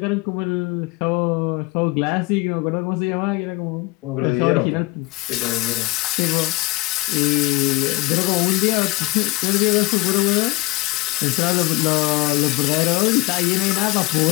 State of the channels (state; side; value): quieter; right; 20.8 dB